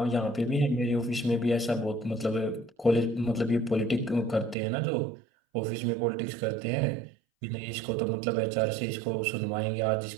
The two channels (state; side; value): drops out; left; at 4.5 s